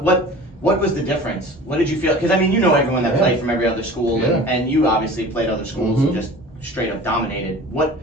was the difference? What did you feel? Because I mean, you know everyone that played from every other school, and you obviously played other schools and just straight up dominated. What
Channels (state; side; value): normal; both; correlation 0.41